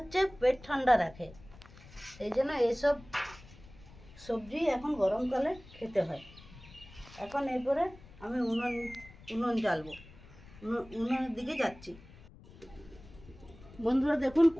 পেট ঠান্ডা রাখে, সেই জন্য এইসব সবজি এখন গরমকালে খেতে হয়। এখন এরপরে আমি উনুন জ্বালবো, উনুনের দিকে যাচ্ছি। বন্ধুরা দেখুন,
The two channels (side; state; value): left; noise; rumble, 20 dB below the sound